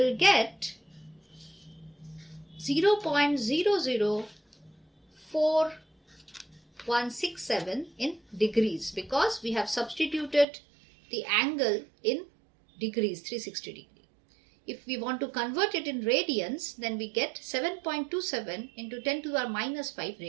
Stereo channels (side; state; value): left; drops out; at 10.5 s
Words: get 0.004167 in degrees, because we have substituted the angle in degrees, 360 degree. If we want to convert it in radians, then we get 7.27 into 10 to the minus 5